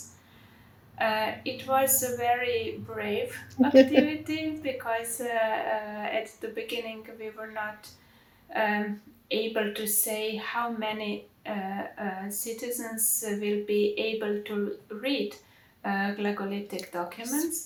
It was a very brave activity because at the beginning we were not able to say how many citizens will be able to read Glagolitic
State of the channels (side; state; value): both; identical; correlation 1.00